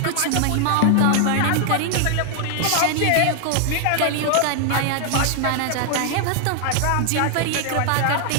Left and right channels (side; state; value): both; different; correlation 0.00